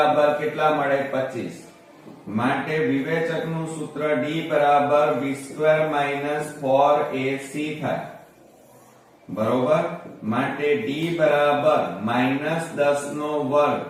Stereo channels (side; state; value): both; identical; correlation 1.00